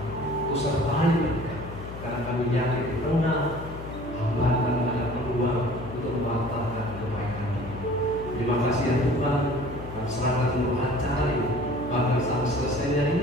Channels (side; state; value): left; noise; hum, 11 dB below the sound